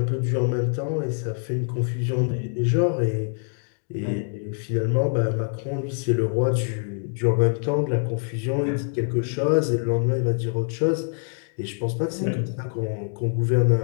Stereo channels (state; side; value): silent; right; 62 dB below the other